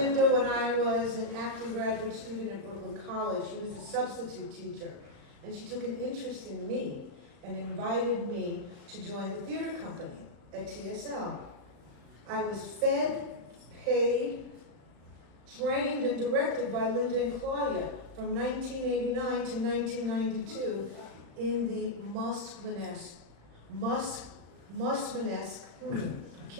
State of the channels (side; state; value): left; late; 35 ms